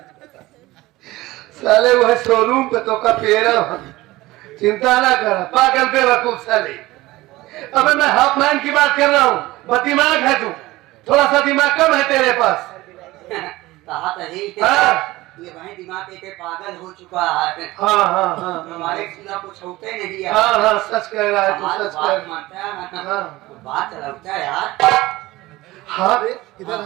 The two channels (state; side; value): quieter; left; 18.8 dB